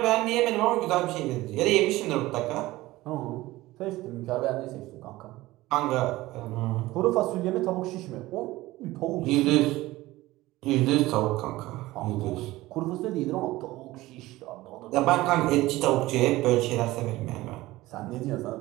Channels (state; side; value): quieter; left; 18.1 dB